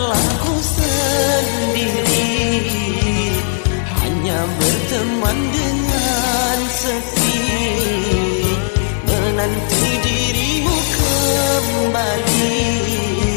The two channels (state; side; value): silent; right; 62 dB below the other